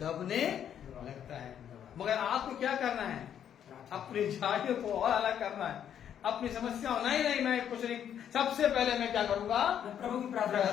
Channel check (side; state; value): right; quieter; 9.3 dB